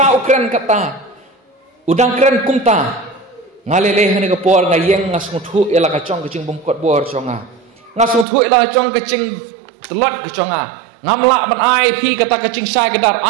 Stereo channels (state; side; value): drops out; left; at 8.2 s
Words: ukren kata udang keren kumta ngalele hene ka por ngayeng ngasnguthu ela ka chong kecing bumkot bor chonga ngasnguthu ela chong kecing telot ka chonga ngamla ban ai phi kata kecing sai kedar